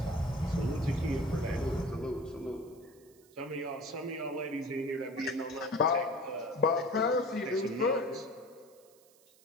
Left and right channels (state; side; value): noise; right; hiss, 28 dB below the sound